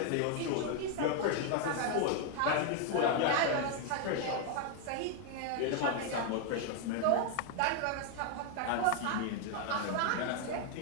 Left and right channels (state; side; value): different; both; correlation 0.00